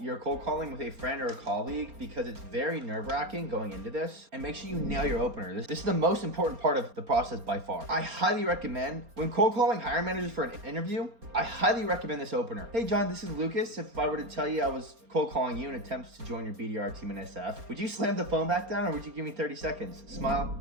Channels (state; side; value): late; left; 4.3 ms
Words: your cold calling with a friend or a colleague because it's very nerve-wracking going into this, and make sure you nail your opener. This is the most important part of the process by far. I highly recommend, when cold calling hiring managers for an interview, I highly recommend this opener. Hey John, this is Lucas. If I were to tell you I was cold calling you in attempts to join your BDR team in SF, would you slam the phone back down or would you give me 30 seconds?